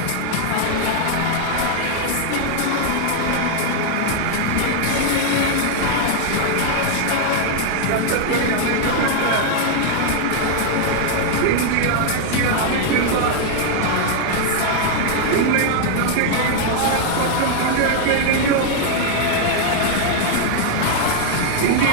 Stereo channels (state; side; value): different; both; correlation 0.00